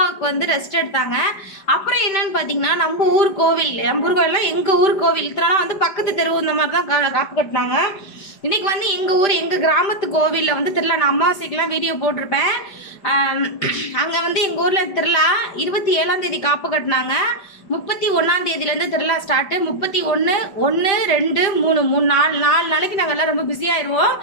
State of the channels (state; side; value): late; right; 5.1 ms